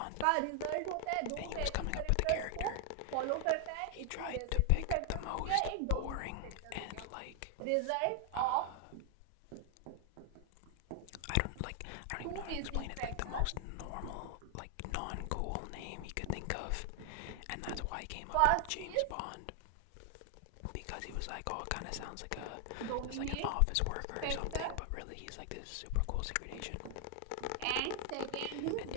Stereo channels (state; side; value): different; both; correlation 0.00